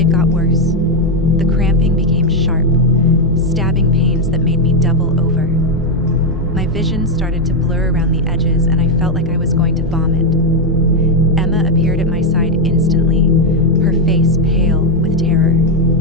got worse. The cramping became sharp, stabbing pains that made me double over. My vision started to blur around the edges and I felt like I was going to vomit. Emma appeared at my side instantly.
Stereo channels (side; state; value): both; normal; correlation 0.04